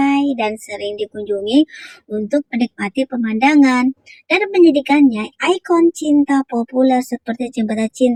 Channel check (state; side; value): identical; both; correlation 1.00